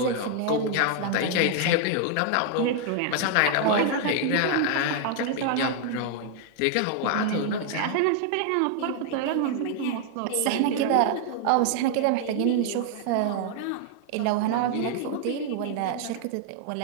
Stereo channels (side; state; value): both; different; correlation 0.00